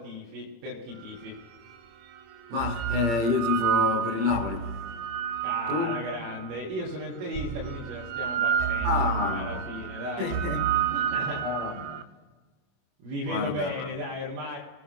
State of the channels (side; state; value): left; late; 26 ms